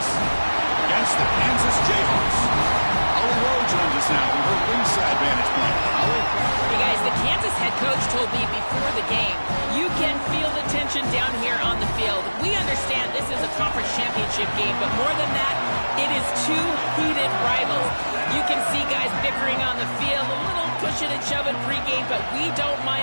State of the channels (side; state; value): both; inverted; correlation -1.00